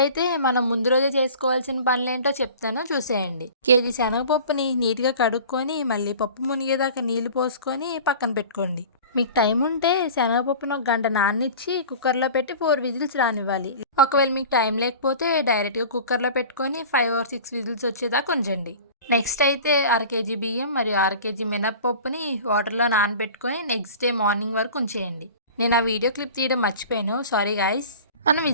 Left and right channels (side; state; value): both; inverted; correlation -0.40